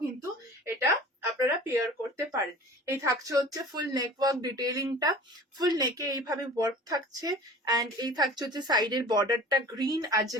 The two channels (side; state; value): both; normal; correlation 0.42